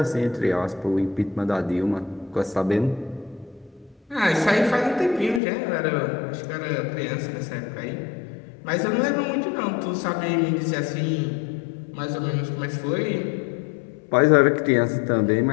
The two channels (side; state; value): right; drops out; at 5.4 s